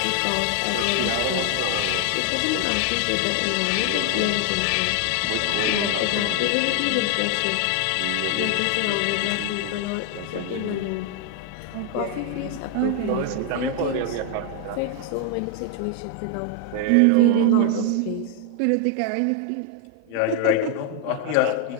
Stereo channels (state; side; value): different; both; correlation 0.00